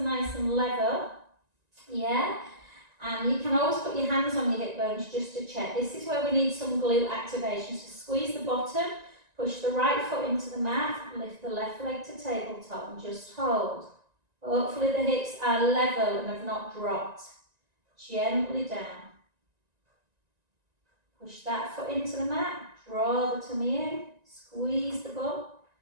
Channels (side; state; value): left; late; 1.9 ms